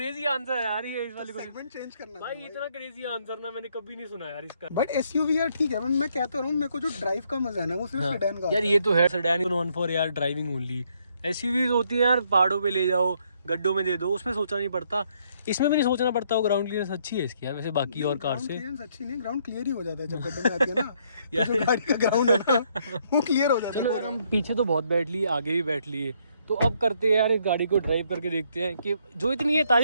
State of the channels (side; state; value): both; inverted; correlation -0.70